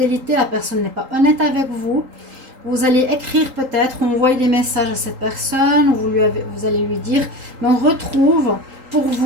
La personne n'est pas honnête avec vous. Vous allez écrire peut-être, envoyer des messages à cette personne, ou vous allez lui dire. Mais on retrouve pour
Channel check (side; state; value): left; late; 3.8 ms